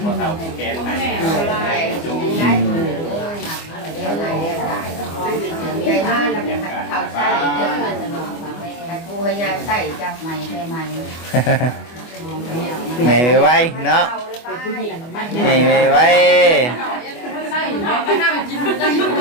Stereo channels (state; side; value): late; right; 24 ms